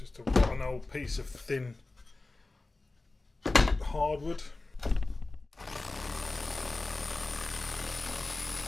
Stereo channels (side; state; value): right; quieter; 3.2 dB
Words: one old piece of thin hardwood.